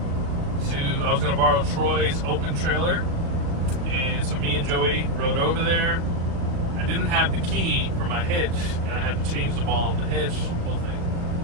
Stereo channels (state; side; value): late; left; 36 ms